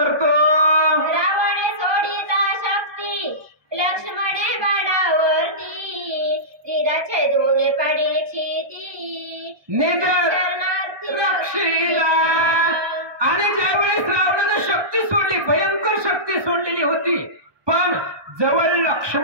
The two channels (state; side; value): late; left; 1.2 ms